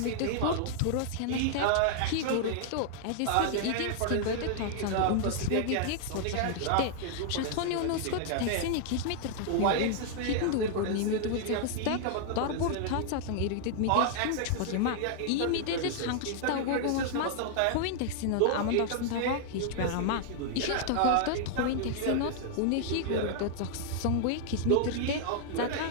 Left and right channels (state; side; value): different; both; correlation -0.01